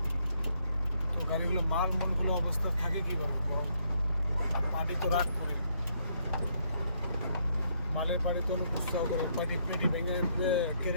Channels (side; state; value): both; inverted; correlation -0.72